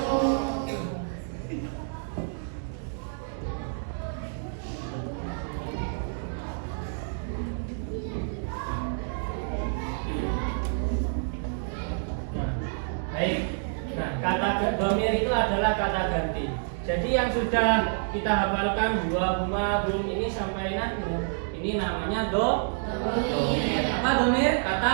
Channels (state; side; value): silent; left; digital silence